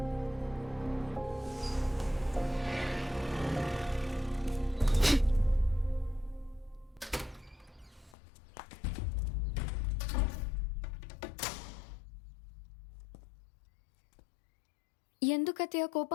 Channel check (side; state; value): right; drops out; at 8.2 s